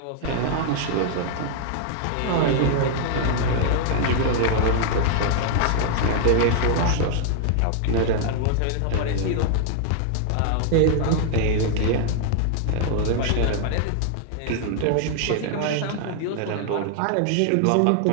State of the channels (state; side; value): different; both; correlation 0.00